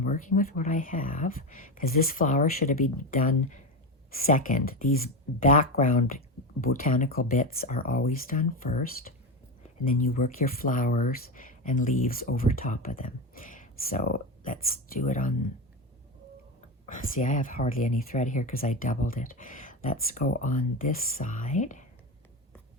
working with what I have, because this flower should have been done second. These background botanical bits are always done first, and then you work your flowers and leaves over top of them. So let's do it on, see, I have hardly any thread here because I doubled it. Let's go on this side.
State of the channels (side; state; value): both; normal; correlation 0.18